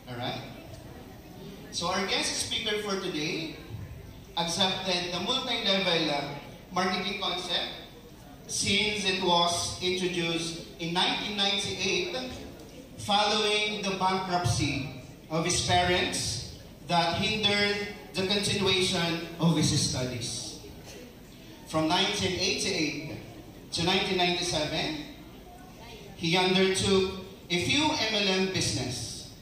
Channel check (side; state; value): both; identical; correlation 1.00